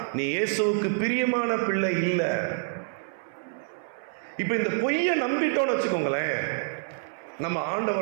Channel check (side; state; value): left; silent; 58 dB below the other